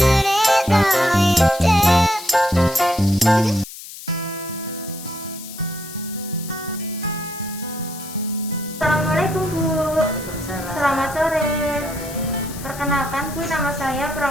ないで。Assalamualaikum Bu. Waalaikumsalam. Selamat sore. Sore. Perkenalkan Bu, nama saya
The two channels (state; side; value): noise; left; hiss, 14 dB below the sound